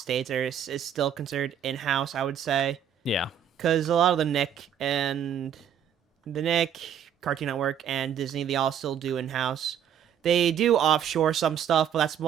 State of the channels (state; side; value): quieter; left; 8.8 dB